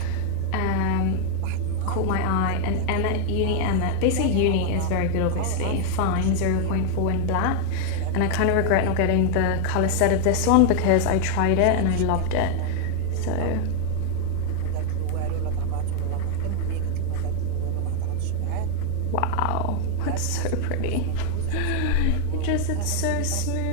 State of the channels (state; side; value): different; both; correlation 0.00